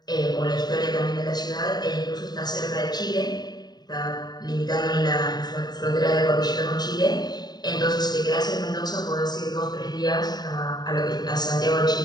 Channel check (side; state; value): right; late; 0.20 ms